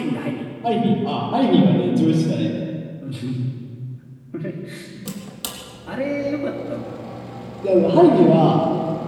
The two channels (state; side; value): identical; both; correlation 1.00